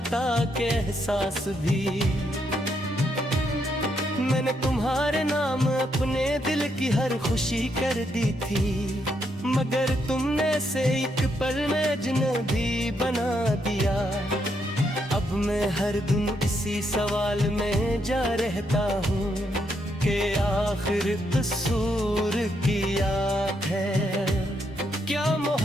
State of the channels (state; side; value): normal; both; correlation 0.77